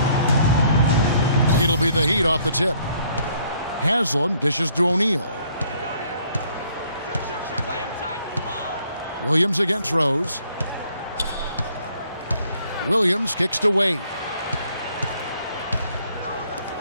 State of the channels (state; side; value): inverted; both; correlation -0.64